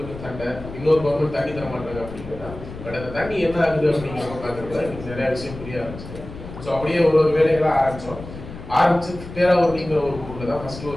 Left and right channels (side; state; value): left; noise; rumble, 13 dB below the sound